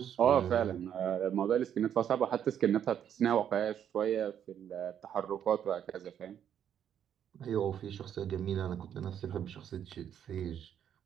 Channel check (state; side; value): quieter; left; 9.3 dB